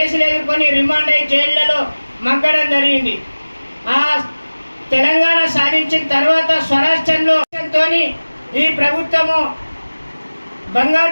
ఎదుర్కొని రిమాండ్ అయ్యి జైళ్లలో మగ్గడం జరిగింది. ఆ తెలంగాణ సాధించిన తర్వాత స్వరాష్ట్రంలో ఈ ప్రభుత్వము బంగారు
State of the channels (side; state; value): both; inverted; correlation -1.00